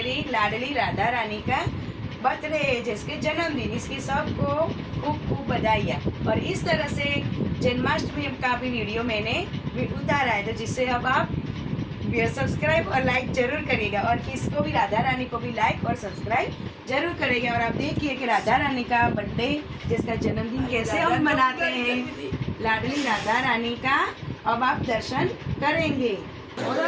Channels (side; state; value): both; identical; correlation 1.00